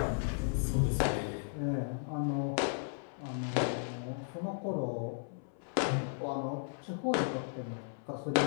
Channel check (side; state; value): right; silent; 54 dB below the other